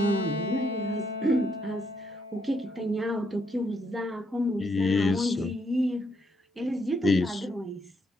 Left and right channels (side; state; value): both; normal; correlation 0.75